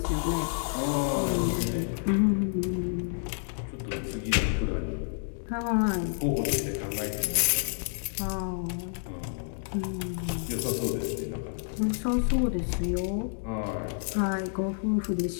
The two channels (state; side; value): silent; right; digital silence